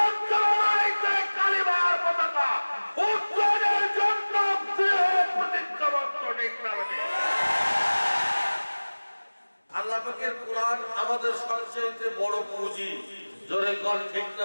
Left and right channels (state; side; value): inverted; both; correlation -1.00